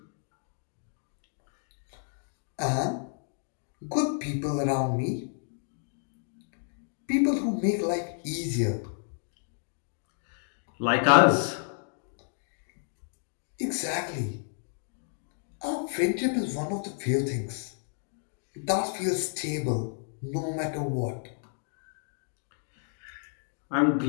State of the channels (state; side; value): silent; right; digital silence